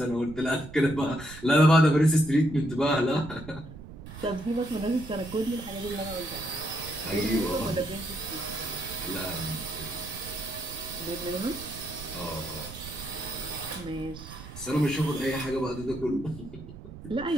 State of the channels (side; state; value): right; noise; rumble, 14 dB below the sound